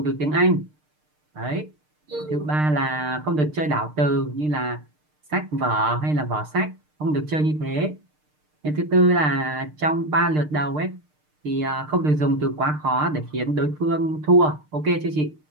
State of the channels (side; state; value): left; late; 6.6 ms